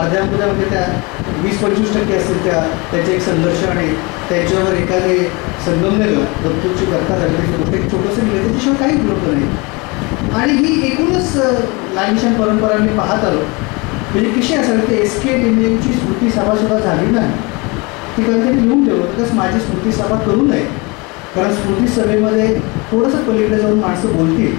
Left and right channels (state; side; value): quieter; right; 27.1 dB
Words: त्या 20-25% असतील त्याचे एक संघर्ष आणि त्याच्यावर एखादे संगमनेरला दत्तूची करता झाली गोष्ट एक छोटंसं लिहिलं त्याच्याशिवाय काही उपलब्ध नाही. आणि ही एकूणच लाल निशाण परंपरा मी पाहत आलो. म्हणजे कशी असेल ते एस.के. लिमयेची स्मृती सभासुद्धा झाली नाही. ती कधीतरी लिहून ठेवलं तसं माझी स्मृती सभा करू नये. कारण स्मृती सभेमध्ये थोडंसं पलीकडे जाऊन माणसं बोलतील